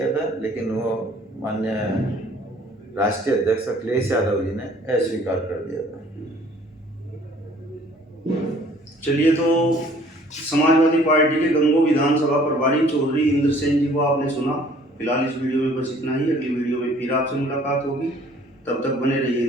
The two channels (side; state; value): both; normal; correlation 0.56